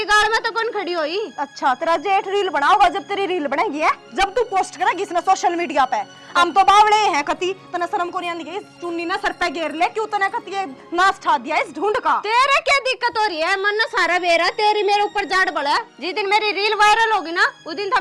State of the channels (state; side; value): identical; both; correlation 1.00